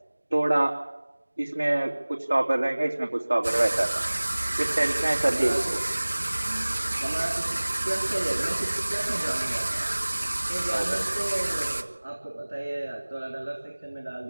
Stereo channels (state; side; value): inverted; both; correlation -1.00